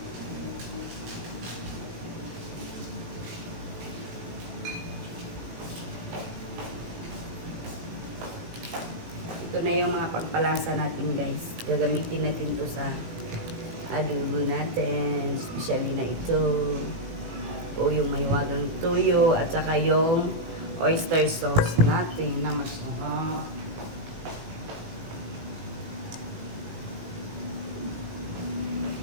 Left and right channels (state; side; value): late; left; 18 ms